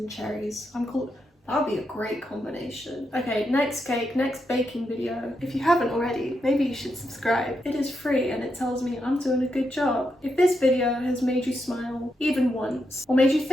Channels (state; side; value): normal; both; correlation 0.83